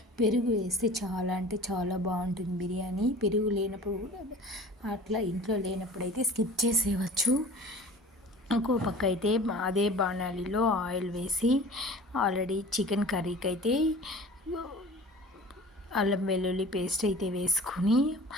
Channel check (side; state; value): both; normal; correlation 0.42